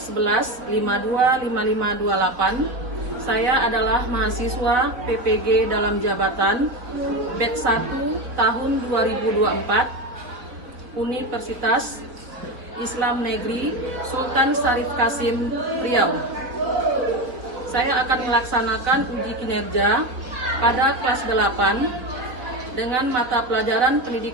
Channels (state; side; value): late; left; 3.9 ms